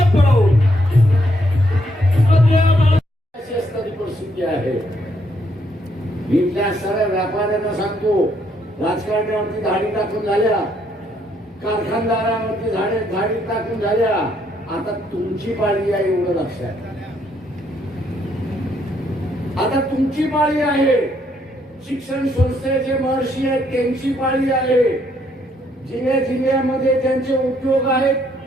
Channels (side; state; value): both; normal; correlation 0.71